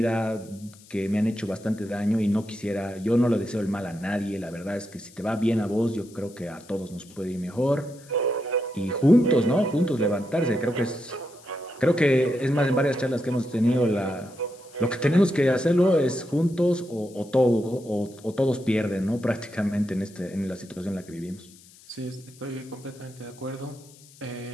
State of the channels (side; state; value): left; noise; hiss, 24 dB below the sound